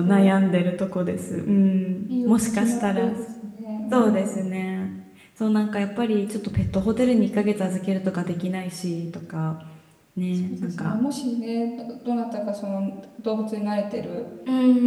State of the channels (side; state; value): both; identical; correlation 1.00